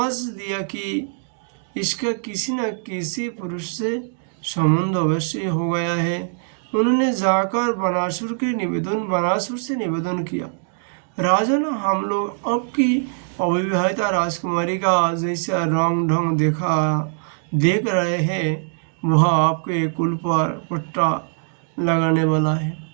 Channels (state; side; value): silent; left; digital silence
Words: दिया कि इसका किसी न किसी पुरुष से संबंध अवश्य हो गया है। उन्होंने जाकर बनासुर से निवेदन किया, राजन, हम लोग आपकी अविवाहिता राजकुमारी का जैसा रंग ढंग देख रहे हैं, वह आपके कुल पर पट्टा लगाने वाला है।